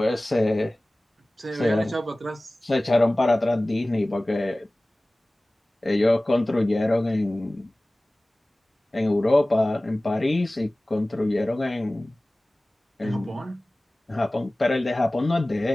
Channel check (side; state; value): both; normal; correlation 0.98